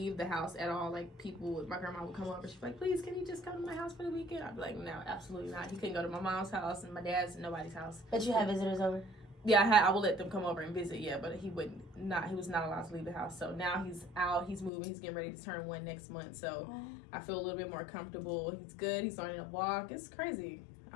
the house at all. Like my grandma would come over. She'd be like, "Please, can you just come to my house for the weekend?" I'd be like, "No, absolutely not." He couldn't go to my mom's house and my dad's and nobody's house. But you have visitors over? Yeah, I would let them come over and visit. Yeah, but he was not allowed to leave the house. So now he's out. He's moving. He's getting ready to turn 1 next month. So I feel a little bit more comfortable. He's good. He's starting to walk. It's crazy.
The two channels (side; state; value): right; drops out; at 14.7 s